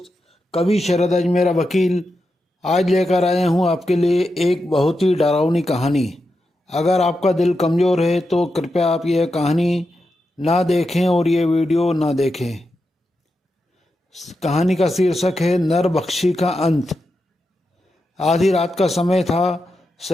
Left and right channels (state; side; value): normal; both; correlation 0.88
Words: कवि शरद अजमेरा वकील आज लेकर आया हूँ आपके लिए एक बहुत ही डरावनी कहानी। अगर आपका दिल कमज़ोर है तो कृपया आप यह कहानी ना देखें और ये वीडियो ना देखें। कहानी का शीर्षक है नरबख्शी का अंत। आधी रात का समय था।